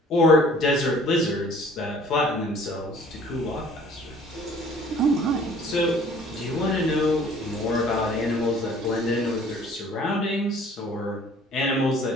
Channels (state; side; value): normal; both; correlation 0.53